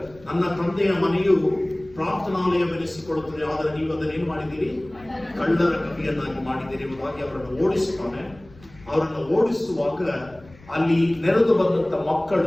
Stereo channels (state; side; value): noise; left; rumble, 24 dB below the sound